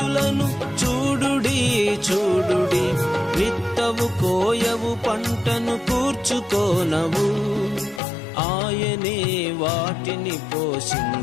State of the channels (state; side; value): drops out; right; at 8.0 s